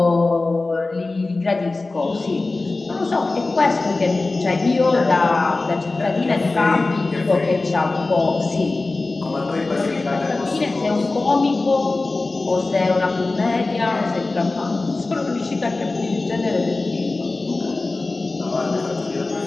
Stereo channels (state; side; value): quieter; right; 3.3 dB